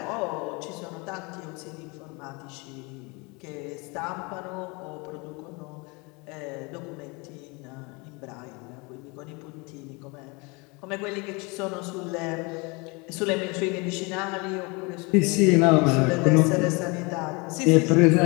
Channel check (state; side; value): quieter; right; 28.3 dB